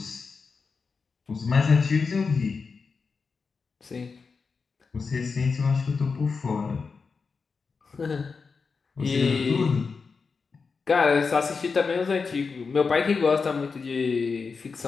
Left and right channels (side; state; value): right; quieter; 4.9 dB